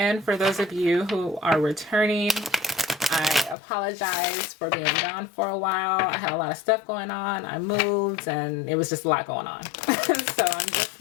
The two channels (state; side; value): drops out; right; at 3.6 s